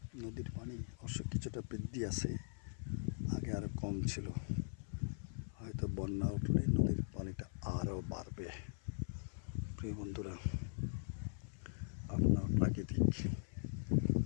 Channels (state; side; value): silent; right; 51 dB below the other